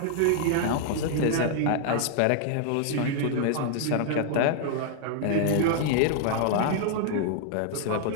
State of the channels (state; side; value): different; both; correlation -0.01